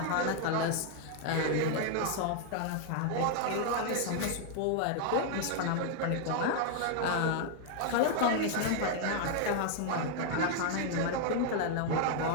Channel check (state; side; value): different; both; correlation 0.00